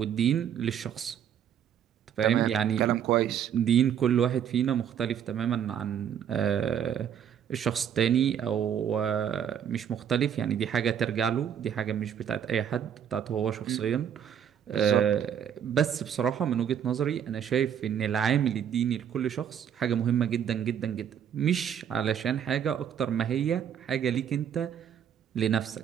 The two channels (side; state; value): left; quieter; 8.8 dB